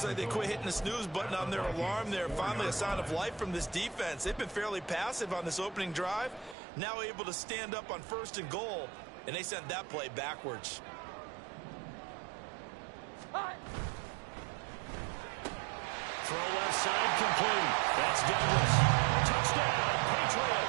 like they quit hitting the snooze button on their alarm there. Finally a sign of life from this defense. They've been fairly passive on this opening drive. Now able to stand up on 1st and goal, and they sent that play backwards. Throw left side complete. That's Douglas. Touchdown,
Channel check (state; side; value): drops out; left; at 6.6 s